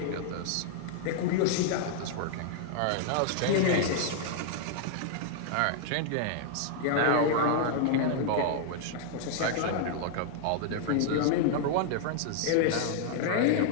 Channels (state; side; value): different; both; correlation -0.01